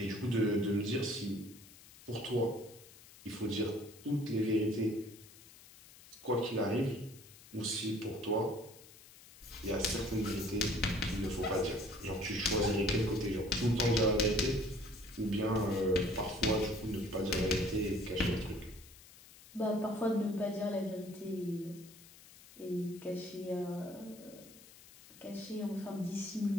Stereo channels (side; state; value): left; noise; hiss, 21 dB below the sound